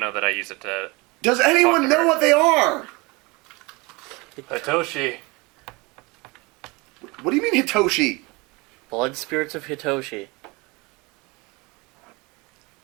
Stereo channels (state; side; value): quieter; left; 25.8 dB